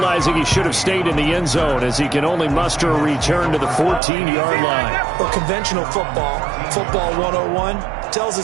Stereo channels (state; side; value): drops out; left; at 4.0 s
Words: he should have stayed in the end zone as he can only muster a return to the 14-yard line. Well, conventional football 101, tells